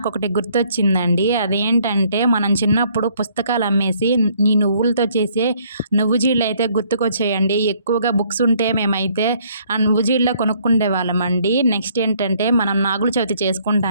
గుర్తొచ్చిందండి. అదేంటంటే మనం చిన్నప్పుడు పుస్తకాలు అమ్మేసి ఈ నువ్వులతో చేసే నువ్వు జీడలైతే గుర్తుకొచ్చాయండి. ఎక్కువగా బుక్స్ ఉంటే మేమైతే ఆ నువ్వు జీడలే కొనుక్కుండేవాళ్ళమండి. నెక్స్ట్ ఏంటంటే మనం నాగుల చవితి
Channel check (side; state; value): both; inverted; correlation -0.64